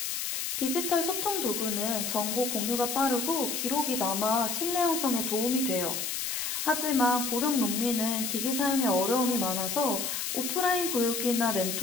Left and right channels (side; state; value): left; noise; hiss, 2 dB below the sound